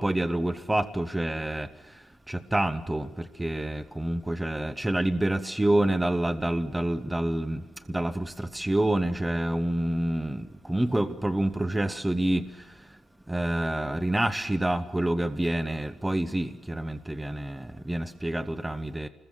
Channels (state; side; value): normal; both; correlation 0.98